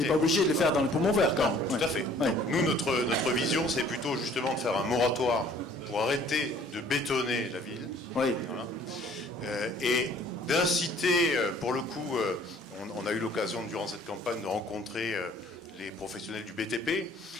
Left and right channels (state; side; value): normal; both; correlation 0.56